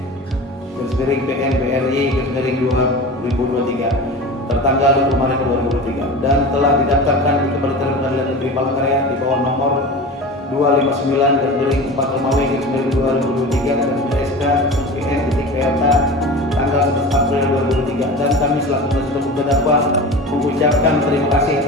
BRI 2023 tertanggal 20 Maret 2023 dan telah didaftarkan di Kementerian Pengadilan Negeri Palangkaraya di bawah nomor 259/4 Romawi 2023 dan SK.PN.PLK tanggal 11 April 2023 dan kami selaku penasihat hukum terdakwa mengucapkan terima kasih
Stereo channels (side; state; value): both; normal; correlation 0.32